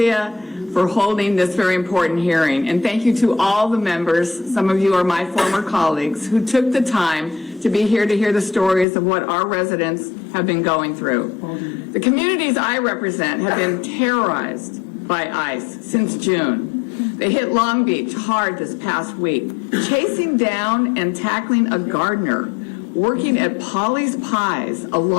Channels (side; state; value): right; drops out; at 8.8 s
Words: for holding this very important hearing. And thank you to all the members, some of you are my former colleagues, who took the time to be here to hear the stories of what our residents have been going through. The communities I represent have been terrorized by ICE since June. They hit Long Beach hard this past week, chasing down and tackling a gardener working at Polly's Pies, a